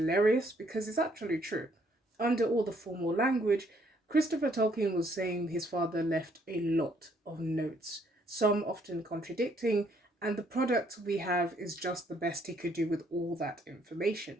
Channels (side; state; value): both; normal; correlation 0.67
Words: because it's actually true. Under all the formal language, Christopher Tolkien was saying his father left a lot of notes, some often contradicting, and the product we have is just the best he could do with all that